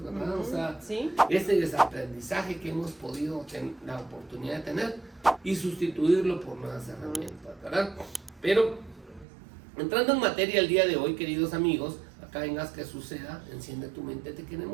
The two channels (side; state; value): left; drops out; at 9.2 s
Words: ¿verdad? O sea, ¿Sí? ese desaprendizaje que hemos podido tener la oportunidad de tener y sustituirlo por nuevas herramientas, ¿verdad? Pero entrando en materia el día de hoy, queridos amigos, acá en Haz que suceda, enciende tu mente, te